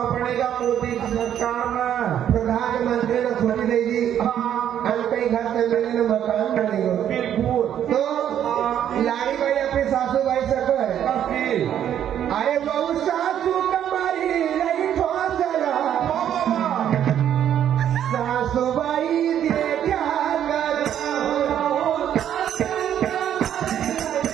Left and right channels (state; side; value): quieter; left; 10.1 dB